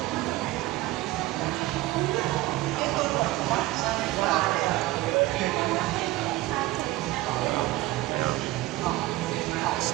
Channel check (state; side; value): quieter; left; 17.7 dB